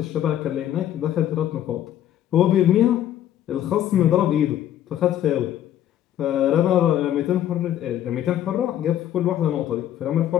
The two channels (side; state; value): right; quieter; 11.5 dB